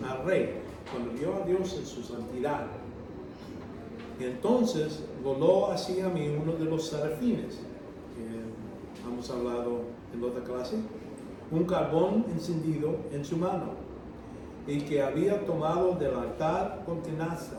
al Rey, cuando vio a Dios en su santidad. Y entonces voló hacia mí uno de los serafines, que hemos hablado en otra clase, un carbón encendido en su mano, y que había tomado del altar con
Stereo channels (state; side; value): identical; both; correlation 1.00